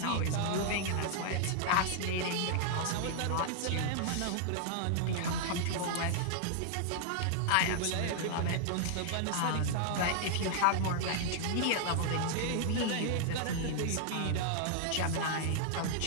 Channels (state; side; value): different; both; correlation -0.01